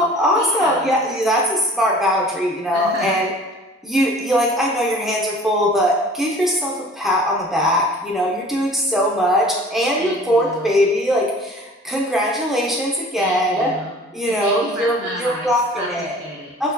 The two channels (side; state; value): both; normal; correlation 0.47